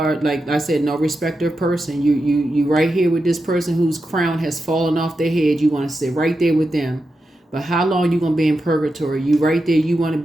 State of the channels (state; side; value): normal; both; correlation 0.89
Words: like I said, no respecter of person. You right here with this person whose crown has fallen off their head. You want to sit right there with them. But how long you gonna be in purgatory? You right there. You want to